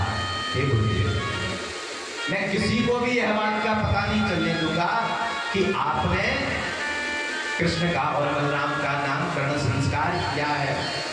हे गुरुदेव मैं किसी को भी यह बात का पता नहीं चलने दूंगा कि आपने कृष्ण का और बलराम का नामकरण संस्कार किया है।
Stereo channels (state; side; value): identical; both; correlation 1.00